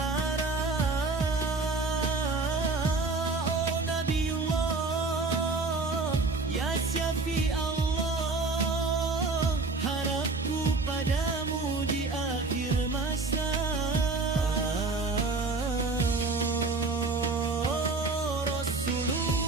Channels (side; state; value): left; quieter; 3.8 dB